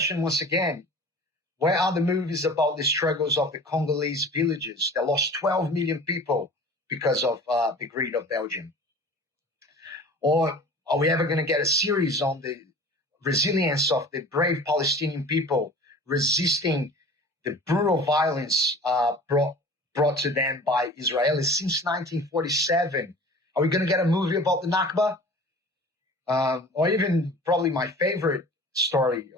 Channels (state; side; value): normal; both; correlation 0.41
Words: once again, where are the movies about the struggles of the Congolese villages that lost 12 million people because of the greed of Belgium? Or are we ever going to get a series on the resilience of the brave Palestinian people resisting the brutal violence brought to them by Israelis since 1947? Are we going to get a movie about the Nakba? Or even probably my favorite story